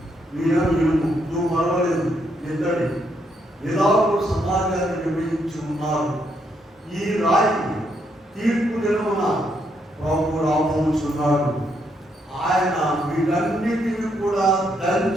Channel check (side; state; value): both; normal; correlation 0.76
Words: మీరో ఇనుము, నువ్వు మరవలేదు ఇతడి ఇలాగూ సమాజాన్ని విభజించి ఉన్నారు. ఈ రాయి తీర్పు దినమున ప్రభు రాబోతున్నాడు. ఆయన వీటన్నిటిని కూడా